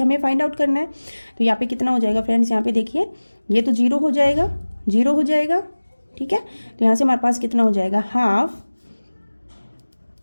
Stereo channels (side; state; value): both; inverted; correlation -1.00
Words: फाइंड आउट करना है। तो यहाँ पे कितना हो जाएगा फ्रेंड्स यहाँ पे देखिए ये तो 0 हो जाएगा, 0 हो जाएगा। ठीक है, तो यहाँ से हमारे पास कितना हो जाएगा हाफ